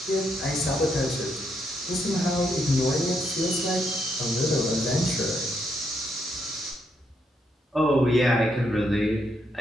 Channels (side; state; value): both; normal; correlation 0.77